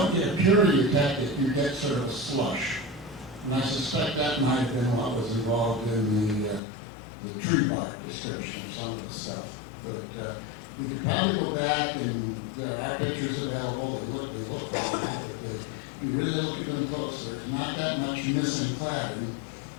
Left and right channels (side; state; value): right; drops out; at 6.6 s